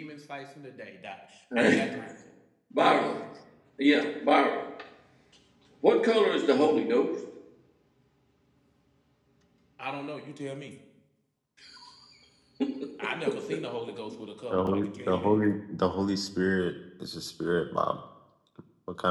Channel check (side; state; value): both; identical; correlation 1.00